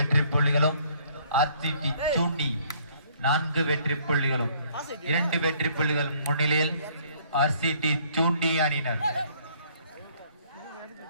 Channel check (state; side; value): inverted; both; correlation -0.62